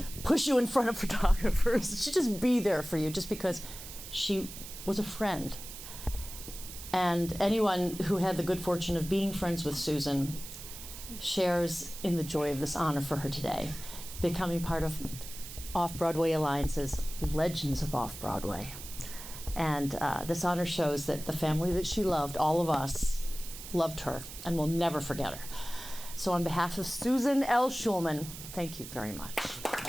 push you in front of photographers. She'd just be there for you just because she was a friend. And anyone who had the good fortune of being friends with Susan shares in the joy of this honor for her today, becoming part of Off-Broadway Alliance's Legends of Off-Broadway. And this honor shows that the family that she loved, all of us, loved her and will never forget her. So on behalf of Susan L. Schulman, thank you very much.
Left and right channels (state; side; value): noise; right; hiss, 12 dB below the sound